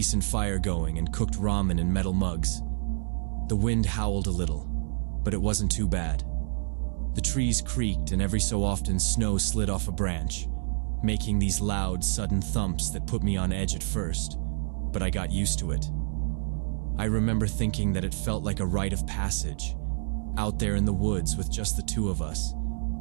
fire going and cooked ramen in metal mugs. The wind howled a little, but it wasn't too bad. The trees creaked and every so often snow slid off a branch, making these loud, sudden thumps that put me on edge at first, but I got used to it. I remember thinking that it felt like a rite of passage, out there in the woods with just the 2 of us,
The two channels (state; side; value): silent; left; digital silence